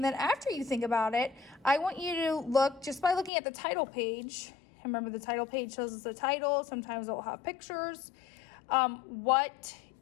then after you think about it, I want you to look, just by looking at the title page. Remember, the title page shows us the title. Sometimes it will have pictures.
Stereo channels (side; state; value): right; drops out; at 3.3 s